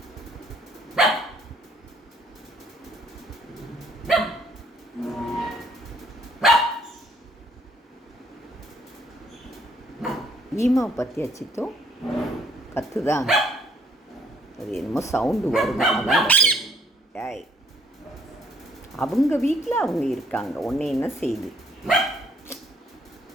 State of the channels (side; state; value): both; normal; correlation 0.65